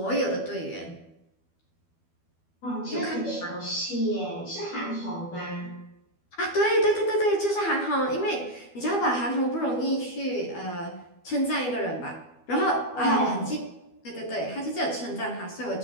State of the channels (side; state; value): right; late; 12 ms